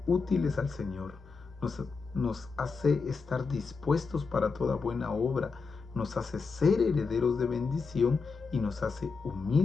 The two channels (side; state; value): right; quieter; 4.7 dB